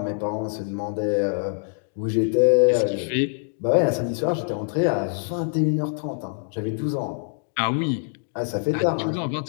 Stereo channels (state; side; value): silent; right; digital silence